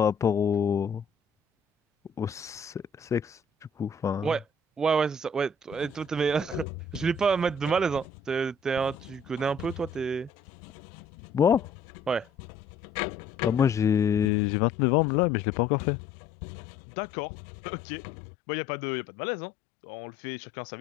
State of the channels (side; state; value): right; drops out; at 14.3 s